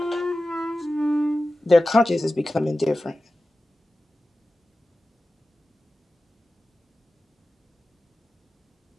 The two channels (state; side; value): normal; both; correlation 0.95